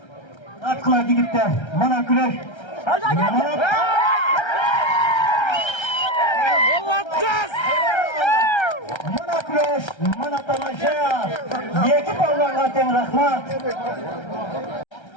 Atla gidip de mana güreş. Mana güreş, mana tamaşa. Yeki palvan'a ten rahmat.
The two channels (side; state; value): right; late; 1.3 ms